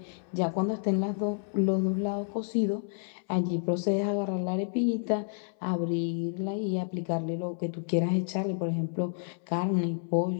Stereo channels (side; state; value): right; silent; 58 dB below the other